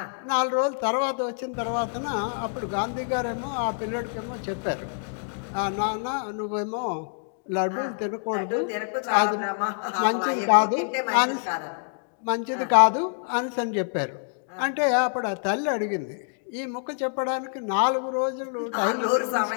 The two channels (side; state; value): right; silent; digital silence